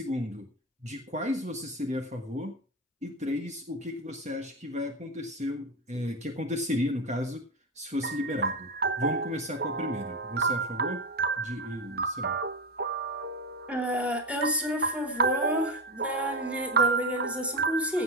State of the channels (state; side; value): normal; both; correlation 0.16